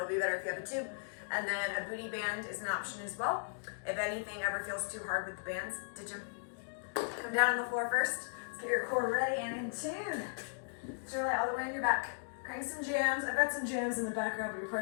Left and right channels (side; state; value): right; silent; digital silence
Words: be better if you have a tube. And then a booty band is an option as well. If anything ever feels too hard with the bands, ditch them. Come down on the floor first. Let's get your core ready and in tune. Surely all the way on your back. Crank some jams. I've got some jams in the background, but you're